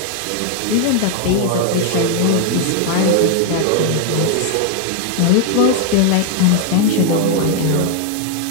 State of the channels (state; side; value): different; both; correlation 0.00